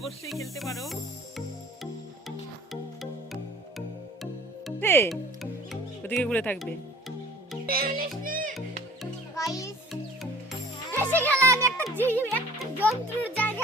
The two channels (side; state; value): both; normal; correlation 0.48